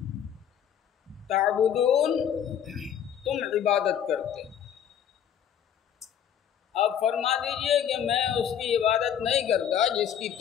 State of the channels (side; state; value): right; quieter; 9.0 dB